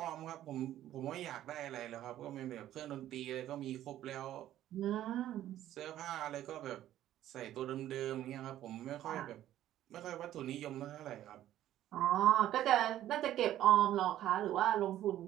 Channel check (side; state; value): left; quieter; 12.7 dB